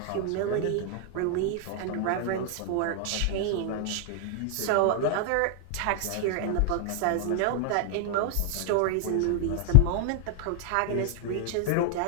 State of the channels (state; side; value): different; both; correlation 0.00